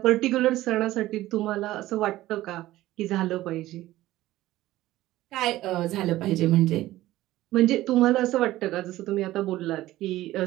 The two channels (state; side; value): quieter; left; 15.9 dB